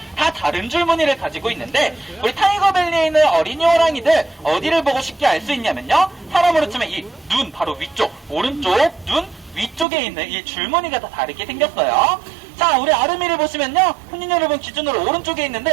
다 다른 줄무늬를 가지고 있는데 우리 타이거밸리에 있는 어린이 호랑이들 어디를 보고 쉽게 알 수 있냐면요, 사람으로 치면 이 눈 바로 위쪽, 오른쪽 눈 위쪽에 있는 이 줄무늬가 다 다르게 생겼어요. 자, 자, 우리 아름이를 보시면요, 손님 여러분 기준으로 오른쪽에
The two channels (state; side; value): drops out; left; at 9.9 s